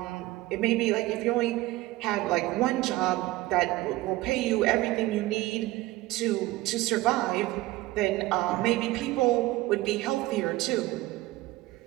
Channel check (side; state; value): left; quieter; 18.2 dB